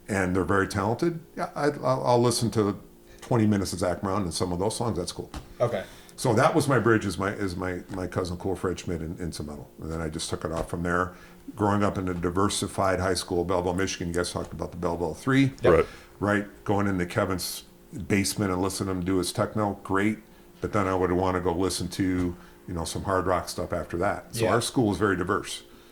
and they're very talented. Yeah, I'll listen to 20 minutes of Zach Brown and some of those songs. That's cool. Okay. So that was my bridge, is my cousin Cool Fred Schmidt into metal, and then I just took it off from there. Growing up in a diversified high school, Belleville, Michigan. You guys talked about the Belleville 3, right? Going into Kevin's basement and listening to him do his techno, great. But then I would want to go listen to some hard rock stuff after that. So our school was very diverse.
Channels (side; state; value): both; identical; correlation 1.00